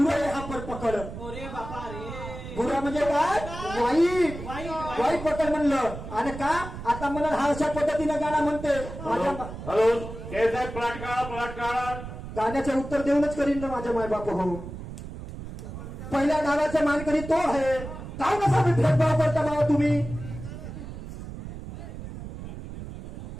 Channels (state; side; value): noise; right; rumble, 10 dB below the sound